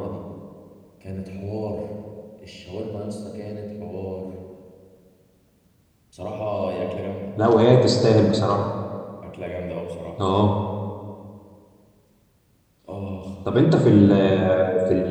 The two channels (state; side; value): identical; both; correlation 1.00